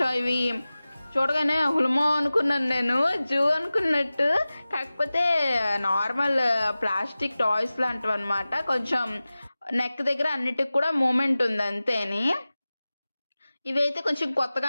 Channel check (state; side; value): inverted; both; correlation -0.97